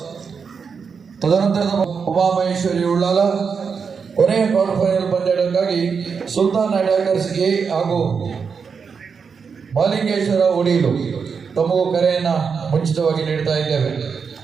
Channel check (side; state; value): left; quieter; 5.9 dB